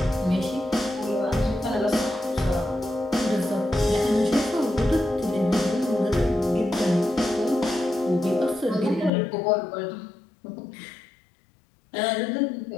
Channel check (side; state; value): right; drops out; at 9.1 s